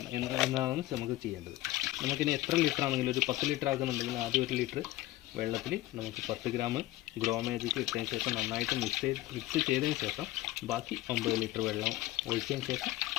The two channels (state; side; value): quieter; right; 16.8 dB